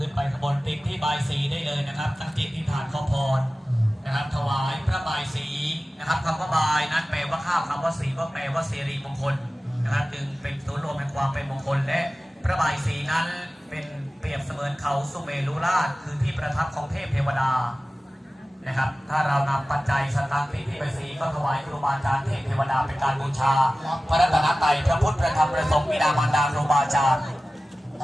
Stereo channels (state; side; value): normal; both; correlation 0.96